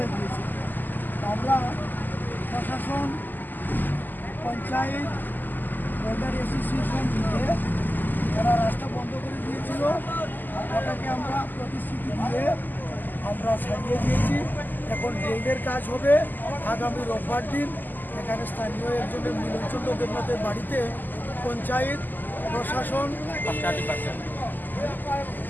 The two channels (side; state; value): right; late; 0.088 ms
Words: গিয়েছে। আমরা প্রশাসন, পঞ্চায়েত, ওয়েদার অ্যাসোসিয়েশন মিলে যারা রাস্তা বন্ধ করে দিয়েছিল ওটাকে আমরা প্রতিশ্রুতি দিয়ে আমরা ছাড়িয়ে দিয়েছি। এখন ড্রেনের কাজ হবে আগামী রোববার দিন। এখানে স্থানীয় একজনের মিলনচন্দ্র দেবনাথের বাড়িতে পঞ্চায়েত, প্রশাসন,